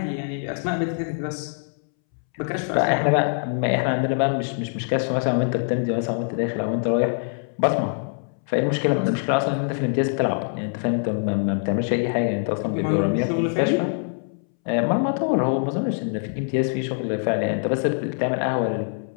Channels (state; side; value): silent; right; 63 dB below the other